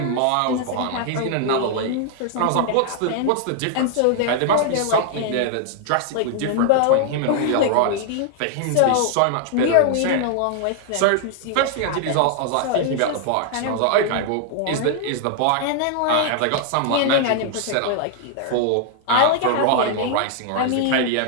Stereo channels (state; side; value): different; both; correlation 0.00